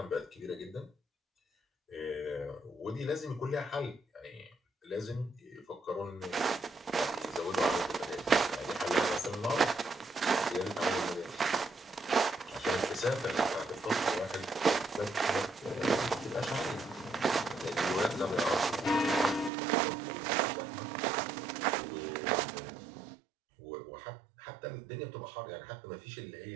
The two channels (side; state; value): left; drops out; at 19.5 s